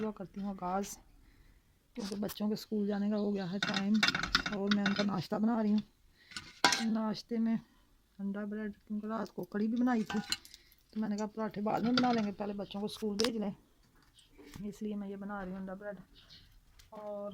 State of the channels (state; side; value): identical; both; correlation 1.00